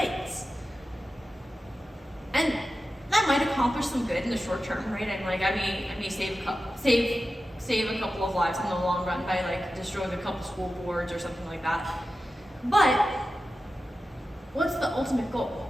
And that might accomplish some good in the short term, right? I may save a couple of lives in the long run by like destroying a couple school boards or something like that. But what's the ultimate goal?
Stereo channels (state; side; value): normal; both; correlation 0.93